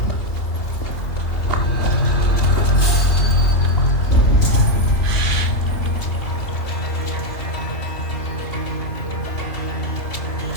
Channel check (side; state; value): right; late; 2.6 ms